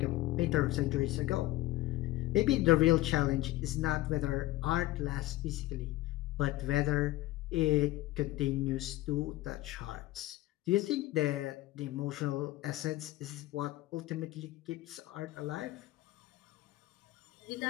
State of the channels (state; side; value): quieter; right; 17.0 dB